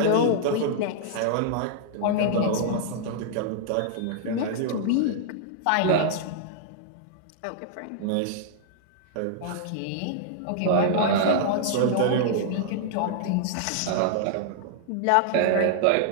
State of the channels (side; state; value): both; different; correlation -0.01